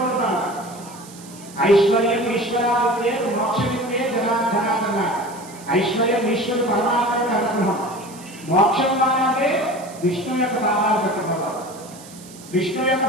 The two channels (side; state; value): right; noise; hiss, 19 dB below the sound